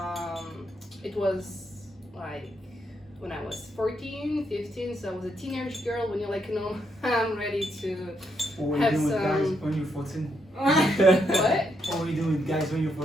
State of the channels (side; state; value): both; normal; correlation 0.78